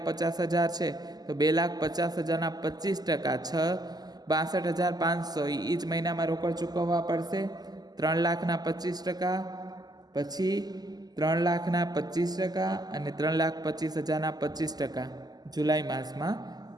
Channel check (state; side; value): late; left; 0.20 ms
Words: છે તો 2,50,000ના 25% 62,500 એ જ મહિનામાં રોકડ ચૂકવવા પડશે. 3,00,000ના 25%, પછી 3,00,000ના 25% અને 3,25,000ના 25% જુલાઈ માસમાં